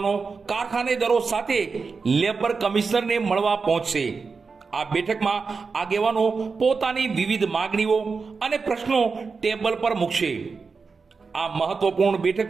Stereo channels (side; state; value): left; quieter; 4.8 dB